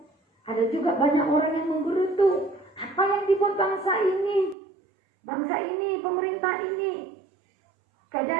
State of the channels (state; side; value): drops out; left; at 4.5 s